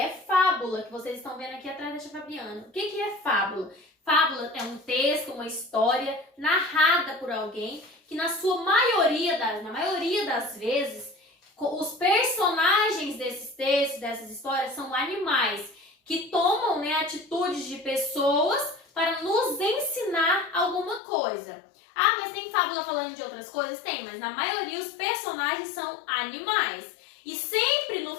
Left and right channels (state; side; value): drops out; right; at 21.0 s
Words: fábula, que vocês estão vendo aqui atrás da tia Fabiana. O que é fábula? Fábula é um texto, uma história narrada por alguém que na maioria das vezes, os personagens desses textos, dessas histórias, são animais que tomam, atitudes de pessoas para nos ensinar alguma coisa. Ah, mas tem fábula falando de outras coisas? Tem, mas na maioria os personagens são animais. E sempre no